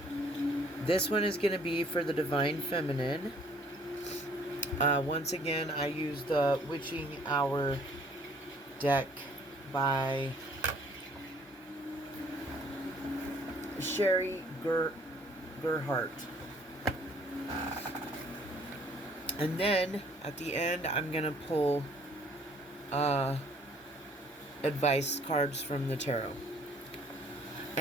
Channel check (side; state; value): both; normal; correlation 0.60